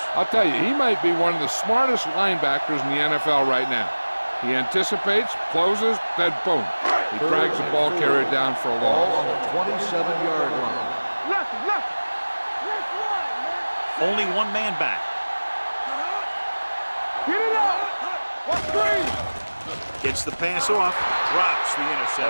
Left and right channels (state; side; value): inverted; both; correlation -1.00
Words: I'll tell you, he might be one of the smartest linebackers in the NFL right now. He anticipates, closes, then boom. He drags the ball carrier down for a Ball loss. on the 27-yard line. Left one, man. Only one man back. Get it up. What's green? Gets the pass off, drops the